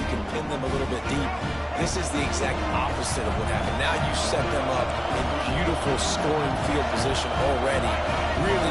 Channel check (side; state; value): both; identical; correlation 1.00